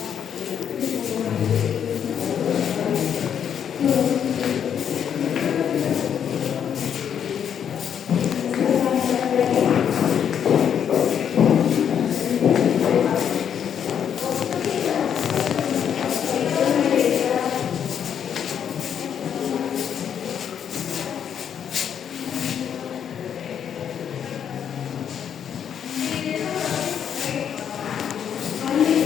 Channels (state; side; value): quieter; right; 8.5 dB